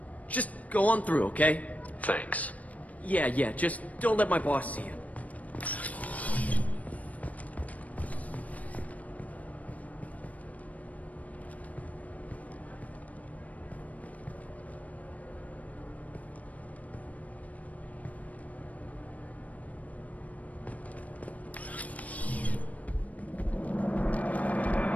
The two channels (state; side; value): late; right; 0.070 ms